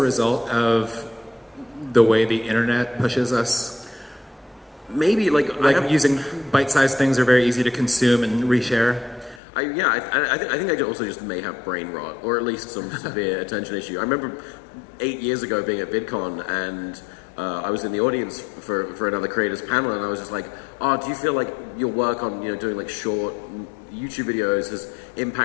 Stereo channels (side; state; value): right; drops out; at 9.4 s